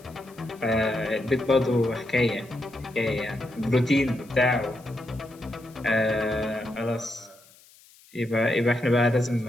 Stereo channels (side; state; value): left; noise; hiss, 26 dB below the sound